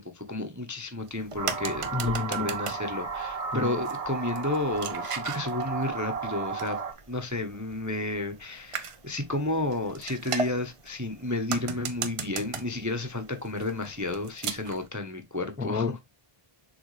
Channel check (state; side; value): late; left; 1.5 ms